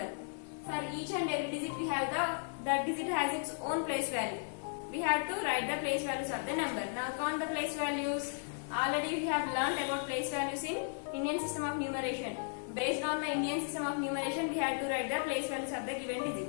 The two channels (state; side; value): silent; right; digital silence